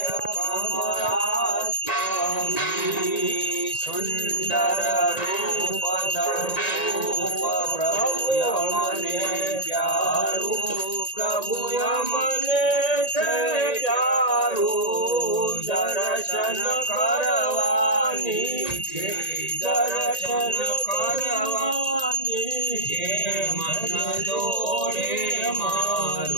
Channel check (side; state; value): right; late; 1.9 ms